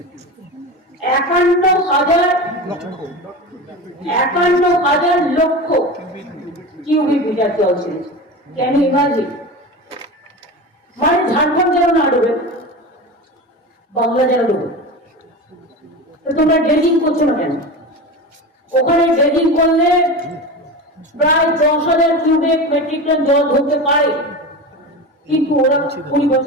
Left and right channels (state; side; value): normal; both; correlation 0.27